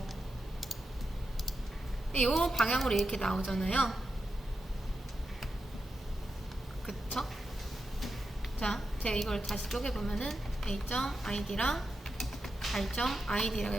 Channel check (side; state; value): both; normal; correlation 0.88